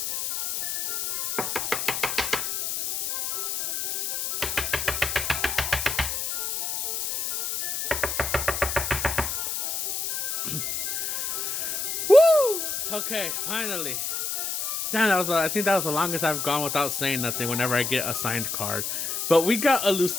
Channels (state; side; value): noise; left; hiss, 1 dB below the sound